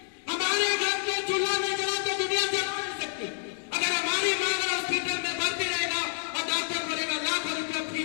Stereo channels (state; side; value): silent; right; digital silence